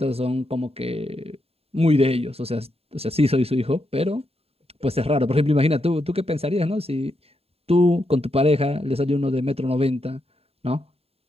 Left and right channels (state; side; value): late; left; 0.29 ms